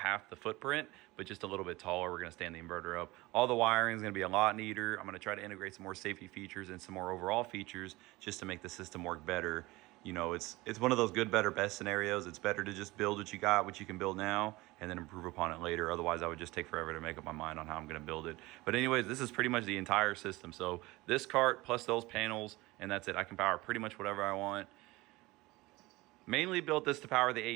the footprint, but just a little bit taller. We're gonna stand the inverter up. All the wiring is gonna be a lot neater. I'm gonna try to integrate some more safety features and some more overall features just to make the system work better. You know, it's one of those good, better, best scenarios. It's better to just build what you got, what you can build now, and then improve upon it later. Otherwise, I would just take forever to make up my mind on how I'm gonna build it. But anyways, this is pretty much the entire system. So this cart plus those panels, and that's it. I can power pretty much whatever I want. Mainly built this to power the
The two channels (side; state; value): left; quieter; 20.9 dB